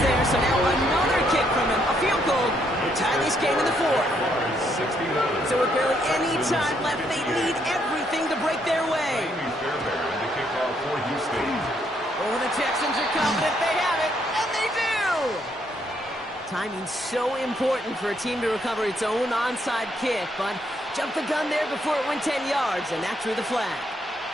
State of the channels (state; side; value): normal; both; correlation 0.73